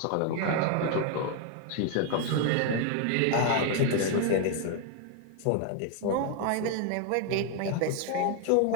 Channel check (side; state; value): both; different; correlation 0.00